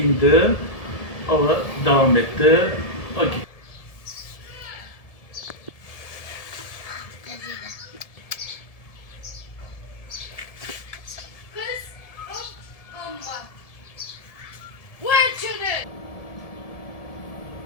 Hava devam etti. Ha, gitti.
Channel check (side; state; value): right; late; 1.7 ms